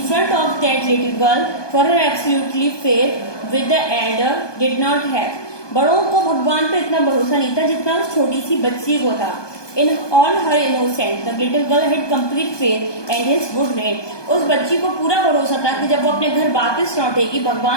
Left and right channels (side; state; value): right; late; 1.2 ms